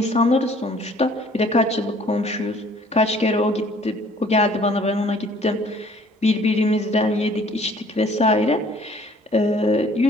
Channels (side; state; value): both; normal; correlation 0.56